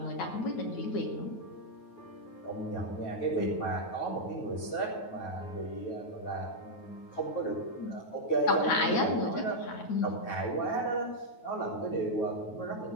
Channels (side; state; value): right; late; 9.3 ms